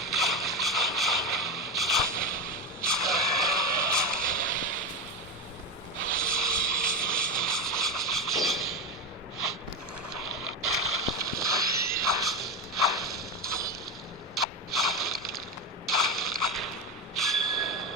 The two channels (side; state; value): both; normal; correlation 0.18